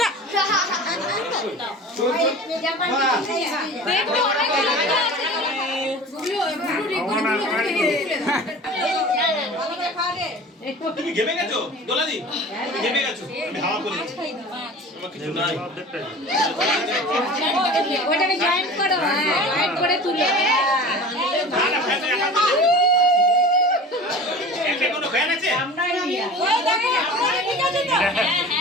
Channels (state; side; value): normal; both; correlation 0.38